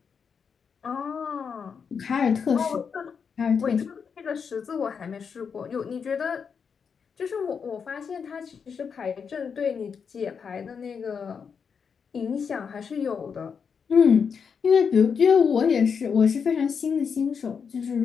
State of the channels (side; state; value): right; quieter; 6.3 dB